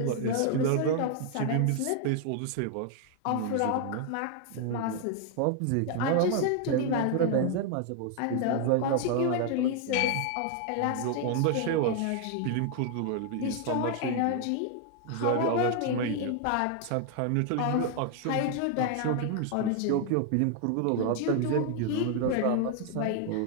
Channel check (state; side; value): different; both; correlation 0.00